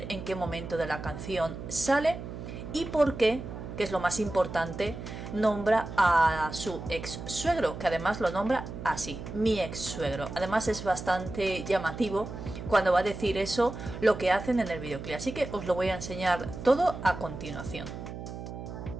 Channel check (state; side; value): noise; right; hum, 9 dB below the sound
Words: en qué momento de la canción sale y por qué, que es lo más importante, nombra a su ex suegro, que además lo nombra así, mi ex suegro. Además es bastante llamativo cuando va a decir eso, lo que hacen en el videoclip, así que os lo voy a enseñar todo a continuación.